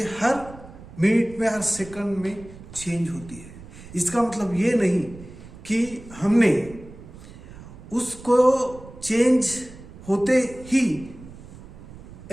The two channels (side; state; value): right; noise; rumble, 17 dB below the sound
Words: हर minute में, हर second में change होती है. इसका मतलब ये नहीं कि हमने उसको चेंज होते ही